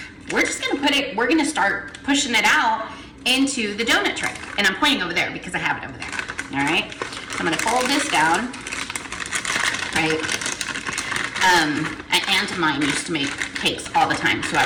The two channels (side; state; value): both; identical; correlation 1.00